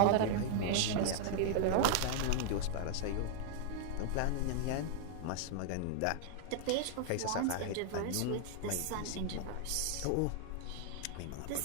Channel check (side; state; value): both; different; correlation 0.00